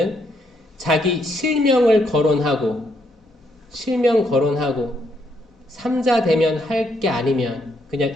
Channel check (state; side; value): normal; both; correlation 0.75